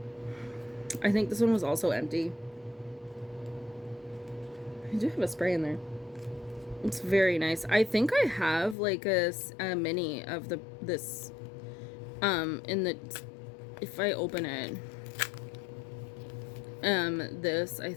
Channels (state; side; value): drops out; right; at 8.8 s